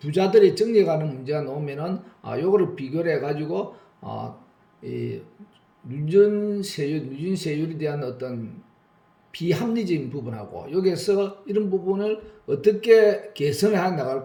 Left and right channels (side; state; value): both; identical; correlation 1.00